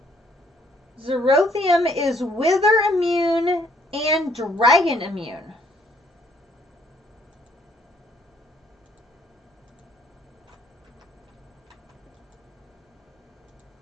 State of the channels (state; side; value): normal; both; correlation 0.64